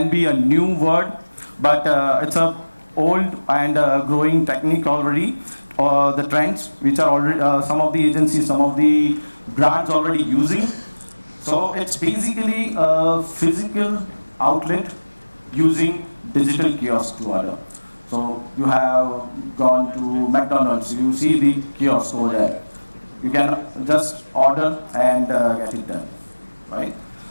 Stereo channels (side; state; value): both; inverted; correlation -1.00